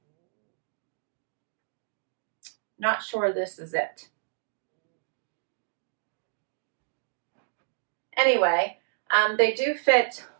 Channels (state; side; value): silent; left; digital silence